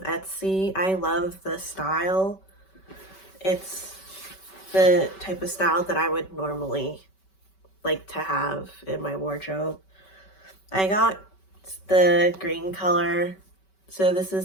Etsy. I love the style. It's the type of style that I would normally like to have in my wardrobe. I got the green color, so this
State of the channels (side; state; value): right; late; 5.2 ms